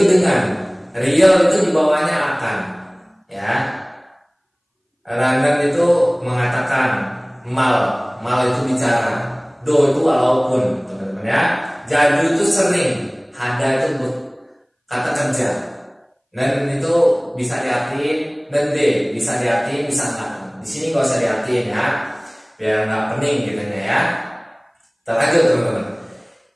dengan. Real itu di bawahnya akan. Ya. Ranen itu mengatakan. Mal itu bicara. Do itu walaupun teman-teman ya. Jadu itu sering. Hada itu kata kerja. Dan itu bisa diartiin. Dan D bisa diartiin bisa enggak. Di sini nggak usah diartiin ya, biar nggak pening gitu ya. Kita lanjut teman-teman.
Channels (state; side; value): identical; both; correlation 1.00